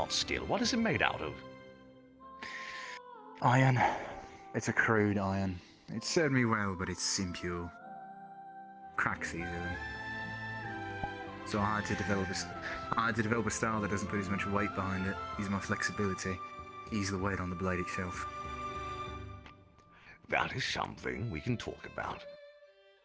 steel. What is it made out of? Iron. It's a crude iron. It served me well, but it's impure. Cracks easily. So I had to develop a style that doesn't put as much weight behind it. Use my flexibility. Ease the weight on the blade itself. That is something we can talk about.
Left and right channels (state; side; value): identical; both; correlation 1.00